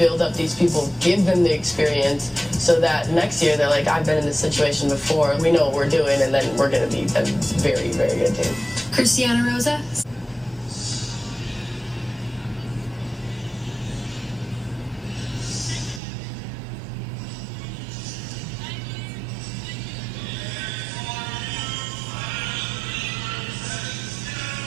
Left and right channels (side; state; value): left; drops out; at 16.0 s